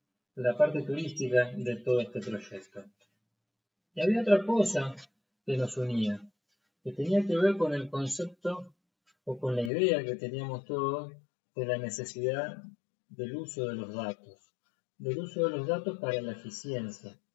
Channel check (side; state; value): right; drops out; at 9.7 s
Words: parte turística de todo este proyecto. Y había otra cosa que nos unía, que tenía que ver con el concepto o con la idea que teníamos todos de la necesidad del uso de los datos para la eficiencia,